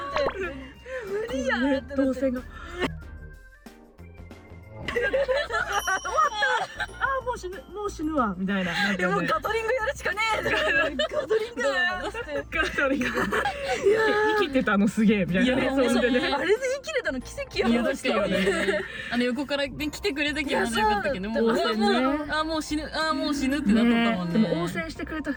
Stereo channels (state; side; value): identical; both; correlation 1.00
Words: 無理やんってなって。動線が。もう死ぬわみたいな。でもガトリングやるしかねえ。ガトリングやって。ガトリング。生きてたのすげえみたいな。いやあれで生きれたの奇跡やいやもん。確かにね。横から来てくれたけどまだよかったけど、もうもう死ぬってなっとったもんね。でも応戦してくれた